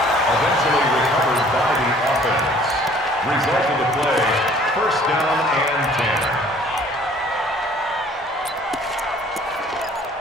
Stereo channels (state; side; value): normal; both; correlation 0.54